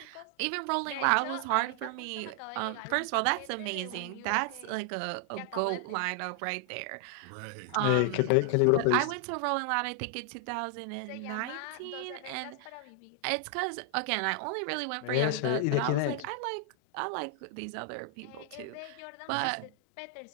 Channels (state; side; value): different; both; correlation 0.00